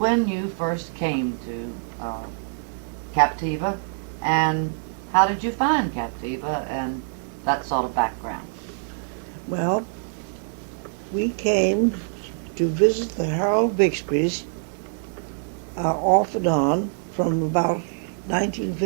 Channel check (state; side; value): silent; left; 56 dB below the other